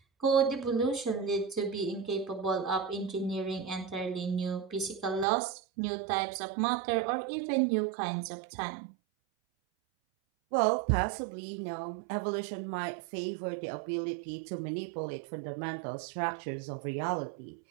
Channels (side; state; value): left; drops out; at 5.2 s